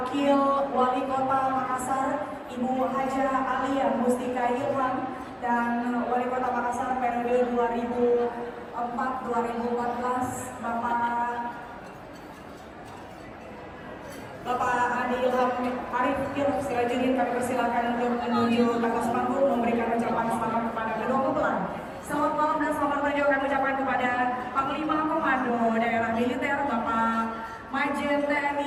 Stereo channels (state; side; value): identical; both; correlation 1.00